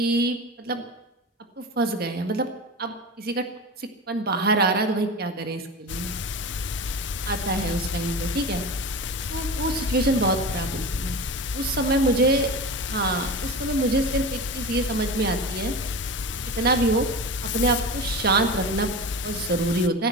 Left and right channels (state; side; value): normal; both; correlation 0.28